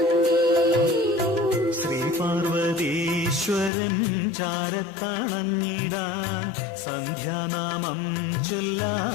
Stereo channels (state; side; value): drops out; right; at 3.7 s